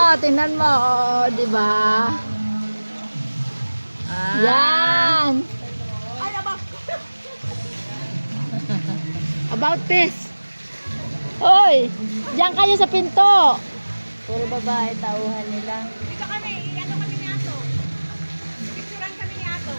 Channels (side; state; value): both; inverted; correlation -1.00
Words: tingnan mo. Oh, di ba? Yan. Ay, aba. About this. Hoy, diyan kayo sa pinto. Puro babae, tauhan nila. Dito kami, ano kami ni Ato? Picturean kami ni Ato.